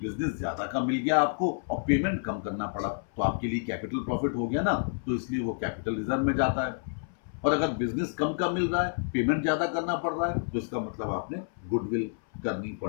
ज्यादा का मिल गया आपको और पेमेंट कम करना पड़ा, तो आपके लिए कैपिटल प्रॉफिट हो गया ना, तो इसलिए वो कैपिटल रिजर्व में जाता है। और अगर बिजनेस कम का मिल रहा है, पेमेंट ज्यादा करना पड़ रहा है, तो इसका मतलब आपने गुडविल करनी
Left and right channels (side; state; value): right; silent; 58 dB below the other